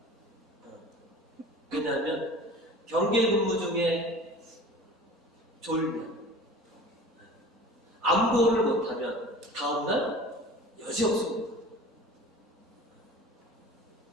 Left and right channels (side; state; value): both; normal; correlation 0.40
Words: 왜냐하면 경계 근무 중에 졸면 안보를 못하면 다음날 여지 없습니다.